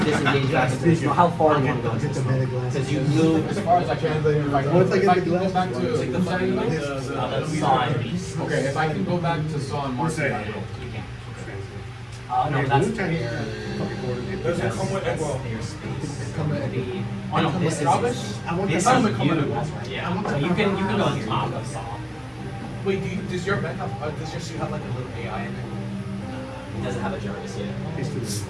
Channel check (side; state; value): both; identical; correlation 1.00